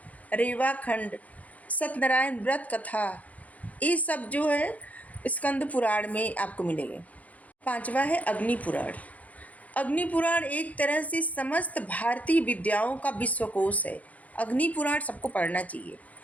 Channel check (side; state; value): right; late; 0.072 ms